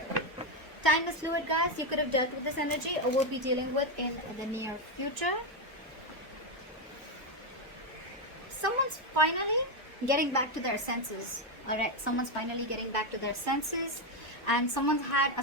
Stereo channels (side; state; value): both; normal; correlation 0.06